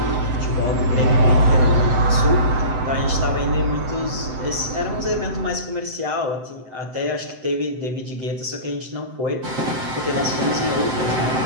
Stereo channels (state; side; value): late; left; 7.8 ms